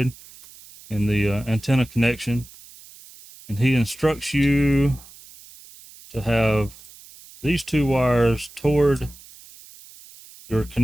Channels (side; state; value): right; noise; hiss, 21 dB below the sound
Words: and the antenna connection. And he instructs you to have these 2 wires toward your